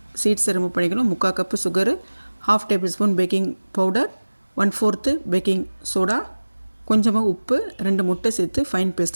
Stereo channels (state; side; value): inverted; both; correlation -1.00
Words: சீட்ஸை ரிமூவ் பண்ணிக்கணும். 3/4 cup sugar, 1/2 table spoon baking powder, 1/4 baking soda, கொஞ்சமாக உப்பு, 2 முட்டை சேர்த்து ஃபைன்